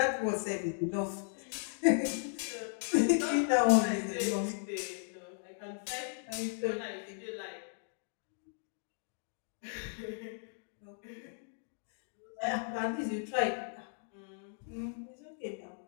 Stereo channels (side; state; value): right; silent; digital silence